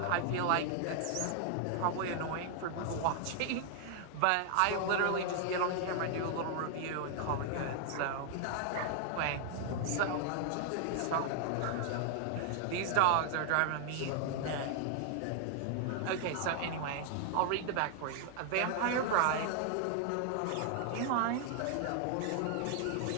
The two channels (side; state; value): both; different; correlation 0.00